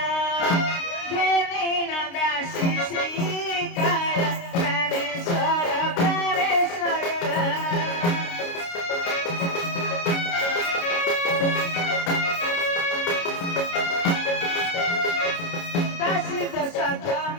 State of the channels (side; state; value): right; late; 29 ms